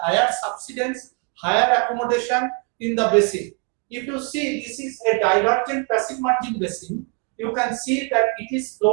subsidence, higher accommodation in the basin. If you see this is a divergent passive margin basin, you can see that it is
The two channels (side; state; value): left; quieter; 34.8 dB